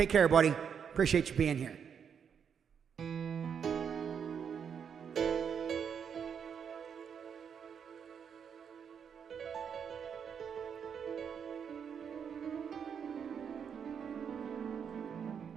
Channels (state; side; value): quieter; left; 7.3 dB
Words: care, buddy. Appreciate you being here.